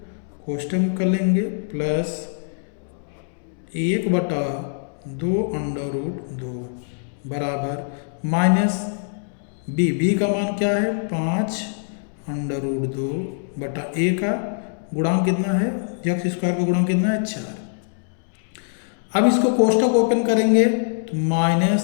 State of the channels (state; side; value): silent; right; 63 dB below the other